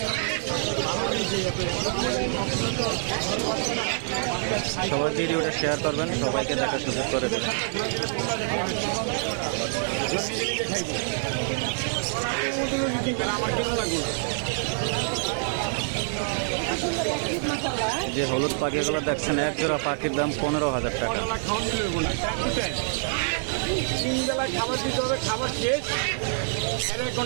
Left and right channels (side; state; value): left; silent; digital silence